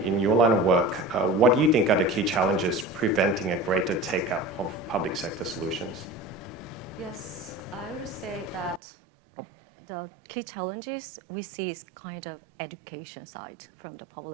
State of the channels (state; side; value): drops out; left; at 8.8 s